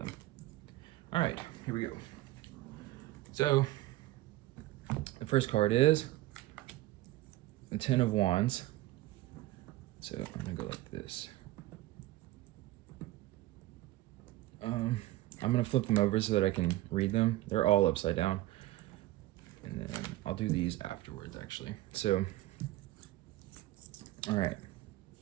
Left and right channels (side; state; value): left; quieter; 17.0 dB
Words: All right, here we go. So the first card is the 10 of Wands. So I'm gonna go like this. I'm gonna flip them over so that I can read them. They're all upside down. And then I'll do these afterwards, actually. So, all right.